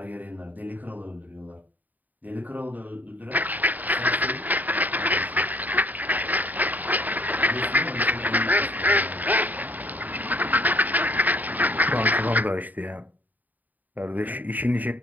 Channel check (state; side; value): late; left; 0.083 ms